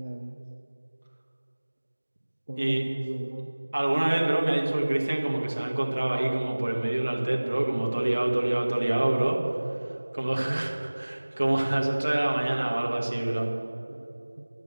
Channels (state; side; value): inverted; both; correlation -1.00